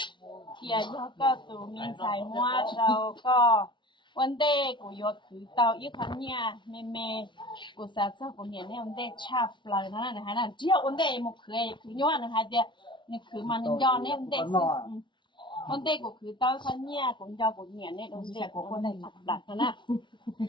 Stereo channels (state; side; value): late; right; 0.23 ms